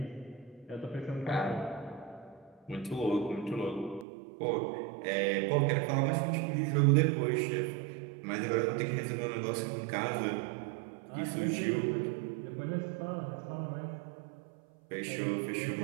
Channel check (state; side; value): drops out; left; at 4.0 s